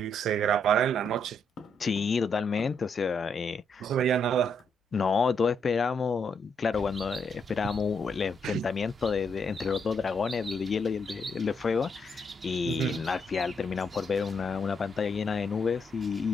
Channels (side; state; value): both; normal; correlation 0.76